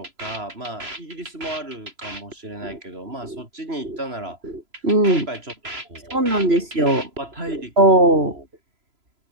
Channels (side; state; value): left; late; 3.0 ms